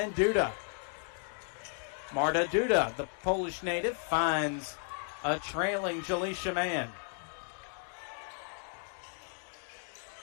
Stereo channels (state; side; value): silent; right; 55 dB below the other